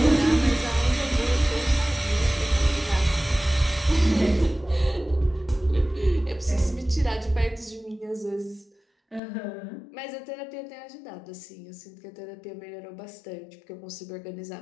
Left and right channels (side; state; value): right; drops out; at 9.2 s